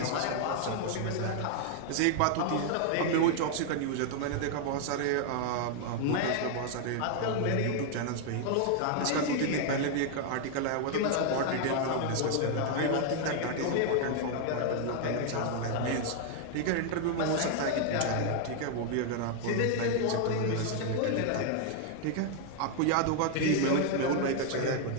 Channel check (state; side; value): different; both; correlation 0.00